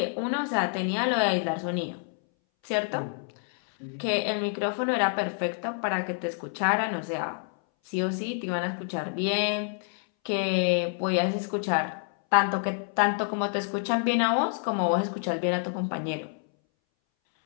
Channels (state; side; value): silent; right; 60 dB below the other